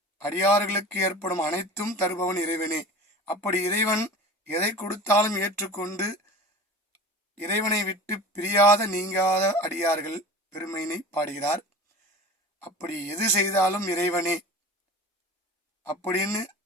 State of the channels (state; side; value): normal; both; correlation 0.37